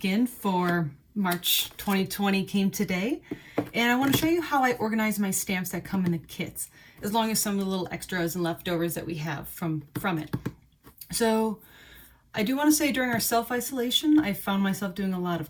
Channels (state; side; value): identical; both; correlation 1.00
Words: for March 2020 came today, and I want to show you how I organize my stamps that come in the kits, as long as some of the little extras and leftovers that we have from it. So I do want to say during our self-isolation, I found myself doing a lot